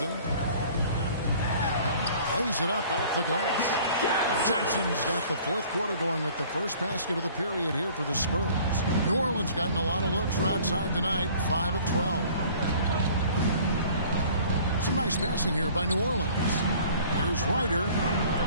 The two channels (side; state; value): both; inverted; correlation -0.51